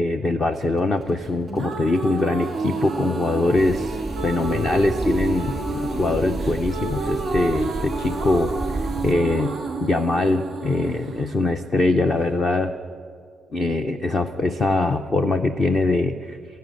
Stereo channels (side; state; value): both; normal; correlation 0.82